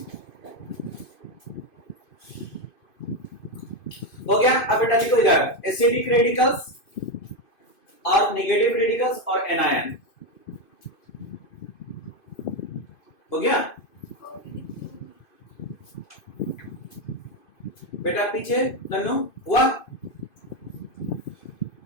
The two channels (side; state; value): right; late; 2.5 ms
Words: हो गया। अब बेटा लिखो इधर एसिडिक रेडिकल्स और नेगेटिव रेडिकल्स और एनायन। हो गया बेटा? पीछे नन्नू हुआ?